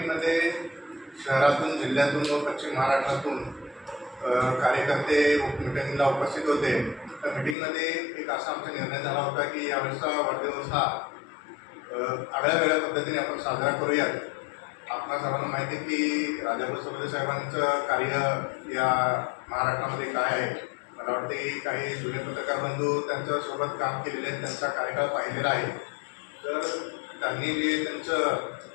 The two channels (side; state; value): right; drops out; at 7.6 s